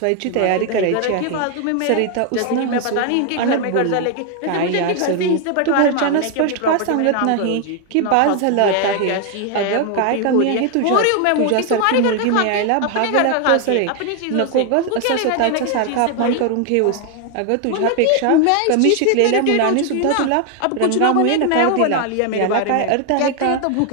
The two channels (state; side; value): different; both; correlation 0.01